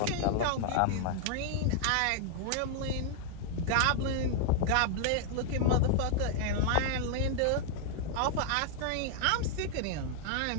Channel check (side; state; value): both; different; correlation 0.00